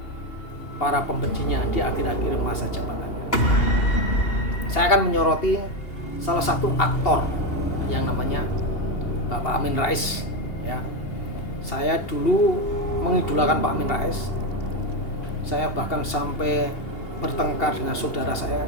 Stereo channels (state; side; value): late; right; 2.8 ms